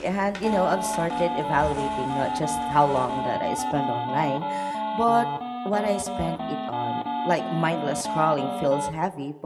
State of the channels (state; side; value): identical; both; correlation 1.00